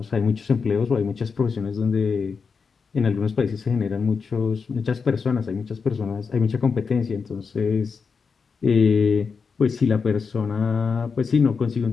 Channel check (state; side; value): quieter; right; 5.4 dB